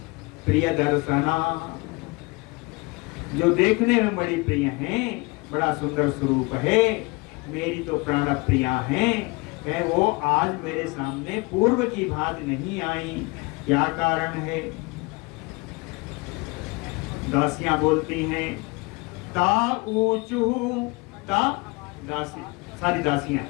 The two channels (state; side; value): quieter; right; 26.5 dB